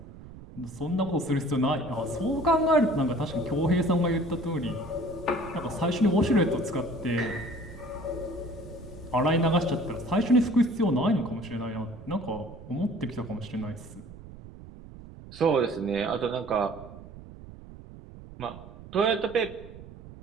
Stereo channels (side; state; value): right; noise; rumble, 16 dB below the sound